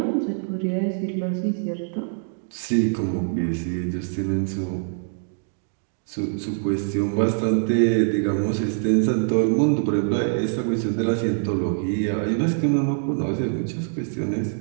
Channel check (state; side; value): silent; left; digital silence